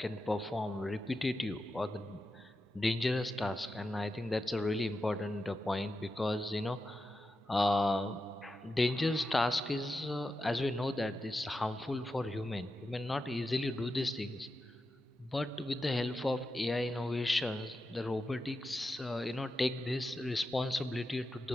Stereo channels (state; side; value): normal; both; correlation 0.89